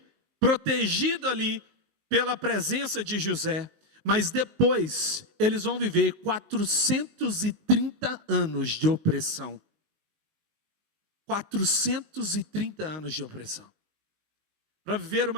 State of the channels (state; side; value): late; left; 19 ms